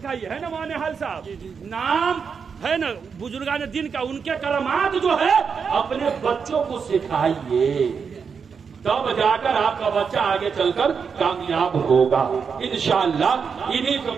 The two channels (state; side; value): quieter; left; 6.1 dB